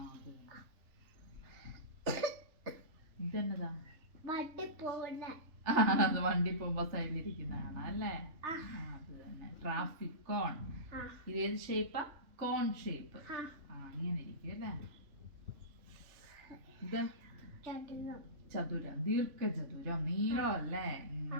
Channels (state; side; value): late; left; 3.3 ms